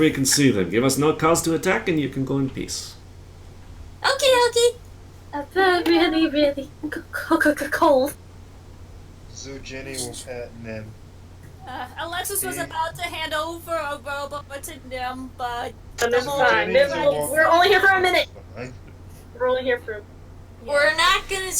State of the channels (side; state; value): both; identical; correlation 1.00